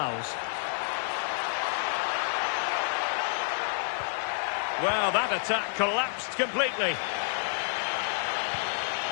Well, that attack collapsed completely.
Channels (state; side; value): silent; right; 58 dB below the other